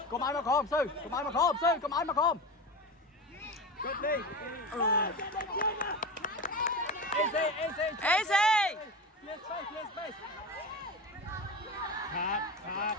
có máy mà không sư có máy mà không cướp đi Easy clear space Khát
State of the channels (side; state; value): both; normal; correlation 0.25